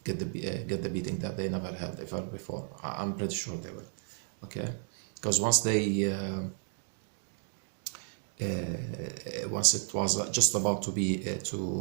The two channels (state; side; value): silent; left; 56 dB below the other